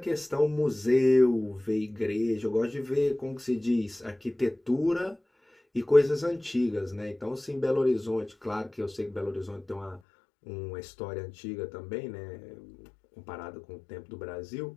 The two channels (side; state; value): right; drops out; at 10.0 s